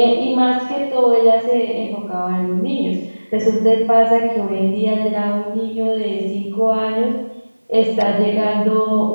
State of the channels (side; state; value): both; inverted; correlation -1.00